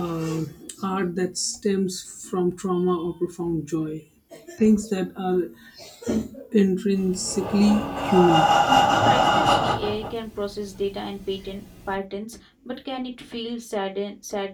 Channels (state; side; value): identical; both; correlation 1.00